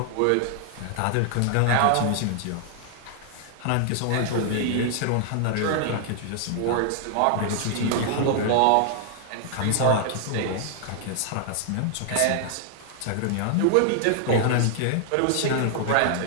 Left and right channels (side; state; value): both; different; correlation 0.00